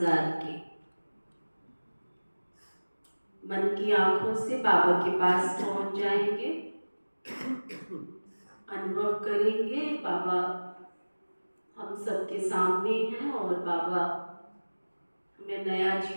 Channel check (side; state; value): both; inverted; correlation -1.00